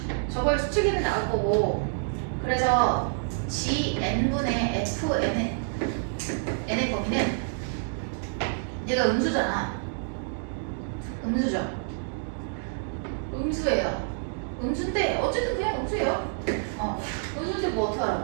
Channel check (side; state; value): left; silent; digital silence